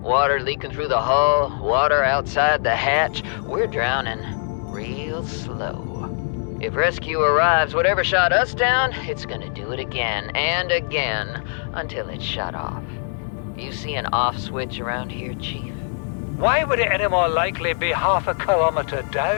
Water leaking through the hull, water outside the hatch. We're drowning real slow. If rescue arrives, whatever shot us down, it's gonna do it again and again until it's shut off. You see an off switch around here, Chief? Why would it any more likely be half a kilometer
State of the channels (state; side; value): silent; right; 64 dB below the other